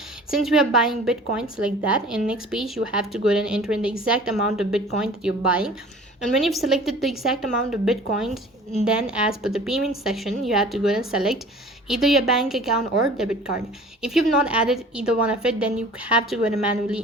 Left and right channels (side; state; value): both; normal; correlation 0.45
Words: Since we are buying Bitcoin, select that, and next page you have to go ahead and enter in the exact amount of Bitcoin that you're buying. And when you've selected the exact amount of Bitcoins, then as per the payment section you have to go ahead and select either your bank account or debit card. If you've not added either one of it, then you have to go ahead and manually